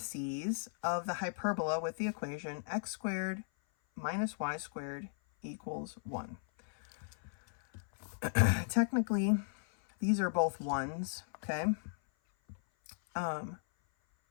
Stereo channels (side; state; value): right; silent; 54 dB below the other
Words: of the hyperbola with the equation x squared minus y squared equals 1. Technically, these are both 1s, okay?